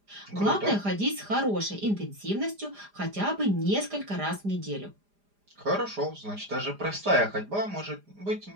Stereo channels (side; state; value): left; late; 4.9 ms